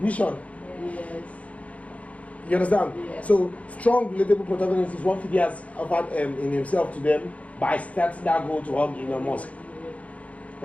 Yes. You understand? Yes. So strong, relatable protagonist is what Phidias offered in himself to them by starting that goal to help Elon Musk.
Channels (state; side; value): late; right; 0.066 ms